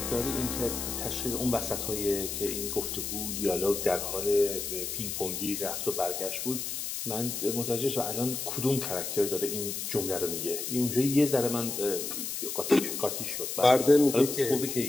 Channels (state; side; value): noise; left; hiss, 4 dB below the sound